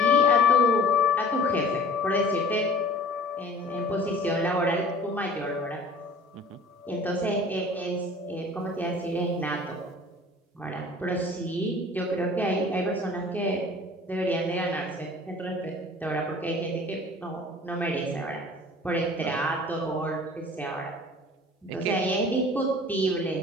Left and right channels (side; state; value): both; normal; correlation 0.47